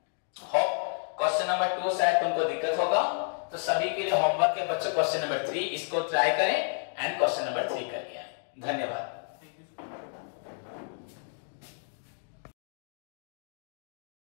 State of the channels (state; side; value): silent; right; 57 dB below the other